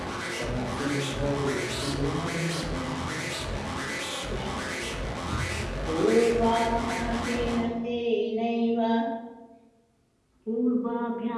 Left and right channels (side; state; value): both; identical; correlation 1.00